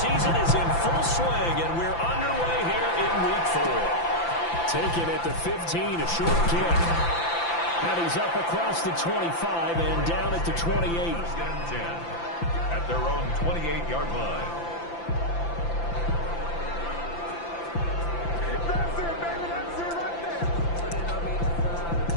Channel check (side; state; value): right; late; 5.9 ms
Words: is in full swing, and we're underway here in Week 4. Taken at the 15, a short kick. And he's up across the 25 and down at the 28. At their own 28-yard line. That's it, baby. That's it right there.